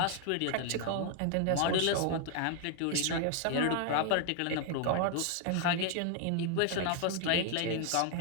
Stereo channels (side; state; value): both; different; correlation 0.00